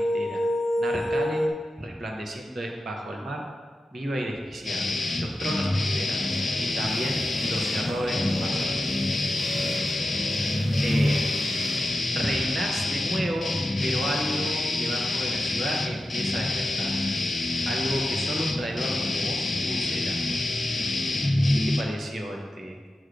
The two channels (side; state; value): both; normal; correlation 0.92